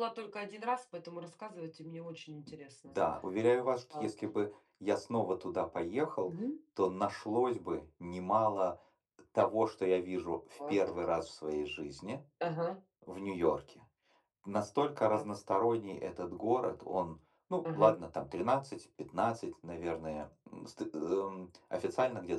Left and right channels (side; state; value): both; identical; correlation 1.00